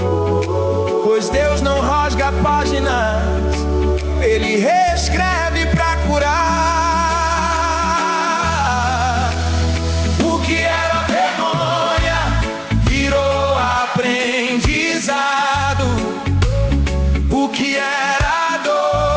Pois Deus não rasga páginas, Ele reescreve pra curar. O que era vergonha virou aprendizado. O que era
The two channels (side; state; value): both; identical; correlation 1.00